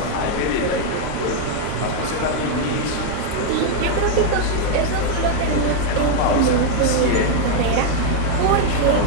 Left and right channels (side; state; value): both; different; correlation 0.00